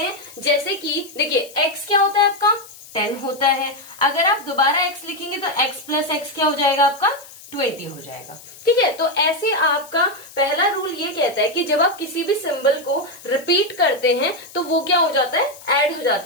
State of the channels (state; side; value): noise; left; hiss, 19 dB below the sound